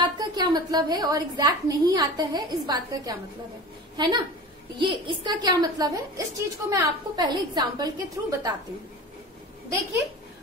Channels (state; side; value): normal; both; correlation 0.34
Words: का क्या मतलब है, और एग्जैक्ट नहीं आता है इस बात का क्या मतलब है ना। ये इसका क्या मतलब है, इस चीज को मैं आपको पहले एग्जाम्पल के थ्रू बताती हूँ। देखिए,